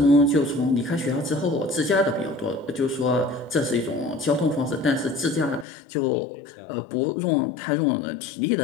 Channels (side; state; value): right; drops out; at 5.7 s